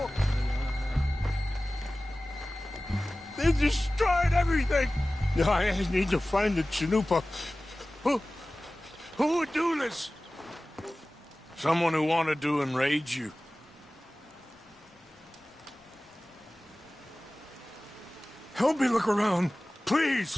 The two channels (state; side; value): normal; both; correlation 0.97